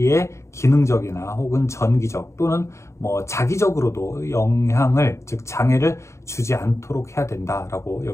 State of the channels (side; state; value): right; late; 0.14 ms